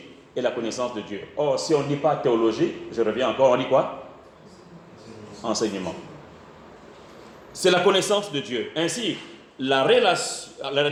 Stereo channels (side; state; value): both; identical; correlation 1.00